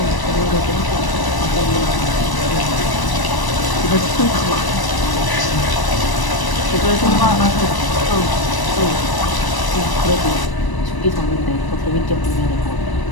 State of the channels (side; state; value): right; late; 1.0 ms